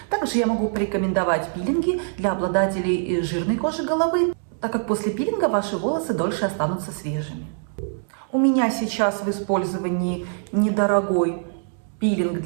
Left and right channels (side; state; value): left; silent; digital silence